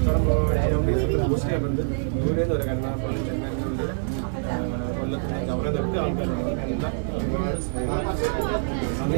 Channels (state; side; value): silent; left; 62 dB below the other